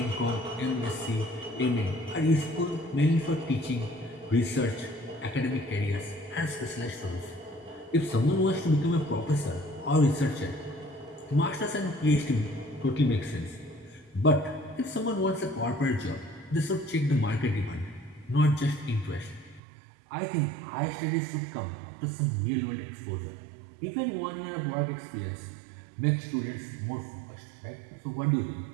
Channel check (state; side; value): drops out; left; at 19.6 s